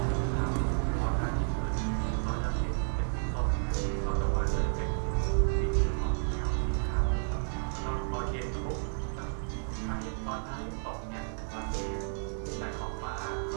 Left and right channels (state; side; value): silent; left; digital silence